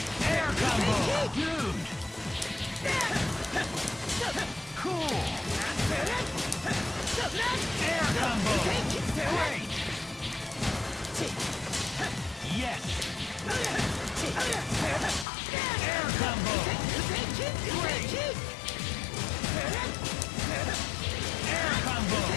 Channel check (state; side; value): drops out; right; at 15.2 s